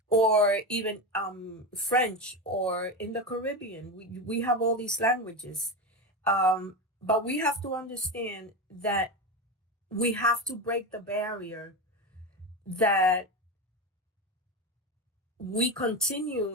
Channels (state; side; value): normal; both; correlation 0.18